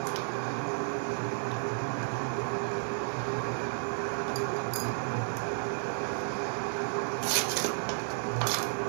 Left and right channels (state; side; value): silent; left; 56 dB below the other